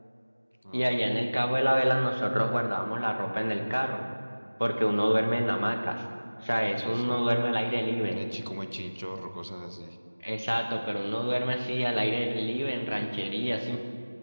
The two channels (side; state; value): both; inverted; correlation -1.00